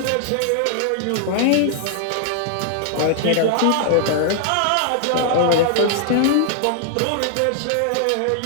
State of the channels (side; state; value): both; different; correlation 0.00